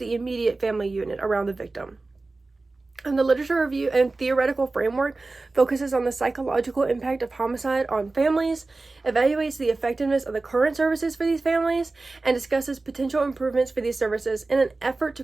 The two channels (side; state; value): left; quieter; 3.4 dB